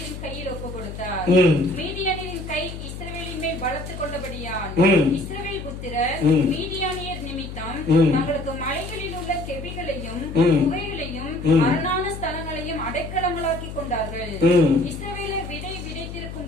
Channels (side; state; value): left; noise; hum, 9 dB below the sound